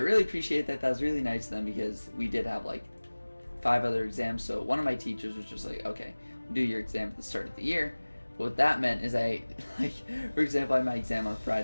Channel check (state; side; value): inverted; both; correlation -1.00